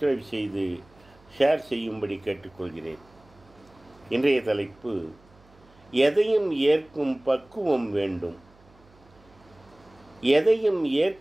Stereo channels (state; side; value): noise; right; hum, 28 dB below the sound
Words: செய்து ஷேர் செய்யும்படி கேட்டுக்கொள்கிறேன். இன்றைய தலைப்பு: எதையும் ஏற்கும் பக்குவம் வேண்டும். எதையும்